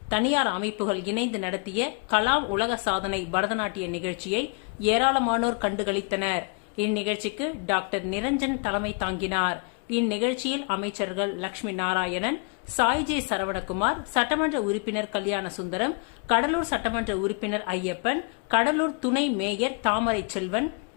தனியார் அமைப்புகள் இணைந்து நடத்திய கலாம் உலக சாதனை பரதநாட்டிய நிகழ்ச்சியை ஏராளமானோர் கண்டுகளித்தனர். இந்நிகழ்ச்சிக்கு டாக்டர் நிரஞ்சன் தலைமை தாங்கினார். இந்நிகழ்ச்சியில் அமைச்சர்கள் லட்சுமி நாராயணன், சாய்ஜே சரவணகுமார், சட்டமன்ற உறுப்பினர் கல்யாண சுந்தரம், கடலூர் சட்டமன்ற உறுப்பினர் ஐயப்பன், கடலூர் துணை மேயர் தாமரை செல்வன்,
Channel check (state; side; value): quieter; right; 36.3 dB